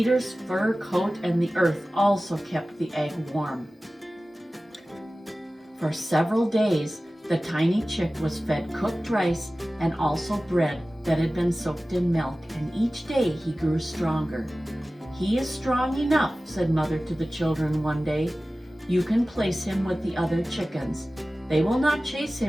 fur coat and the earth also kept the egg warm. For several days, the tiny chick was fed cooked rice and also bread that had been soaked in milk, and each day he grew stronger. "He is strong enough," said Mother to the children one day. "You can place him with the other chickens. They will not chase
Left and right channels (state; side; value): normal; both; correlation 0.96